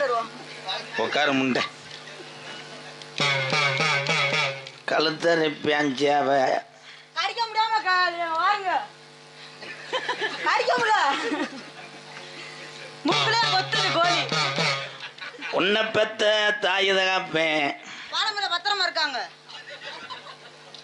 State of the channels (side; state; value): both; identical; correlation 1.00